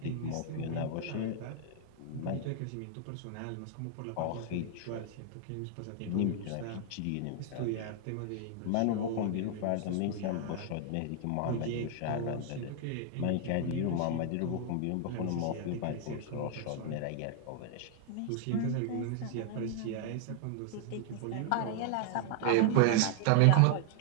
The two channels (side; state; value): both; different; correlation 0.00